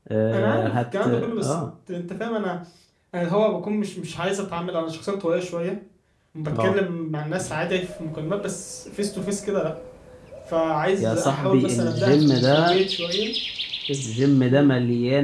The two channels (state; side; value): identical; both; correlation 1.00